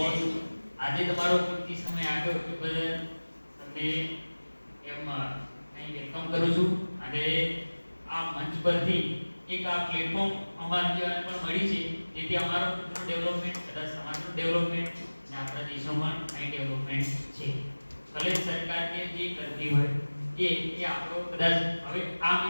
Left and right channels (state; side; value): inverted; both; correlation -1.00